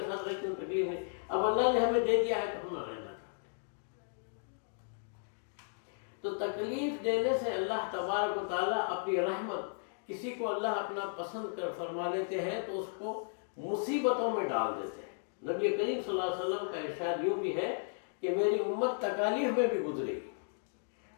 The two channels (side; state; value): right; silent; digital silence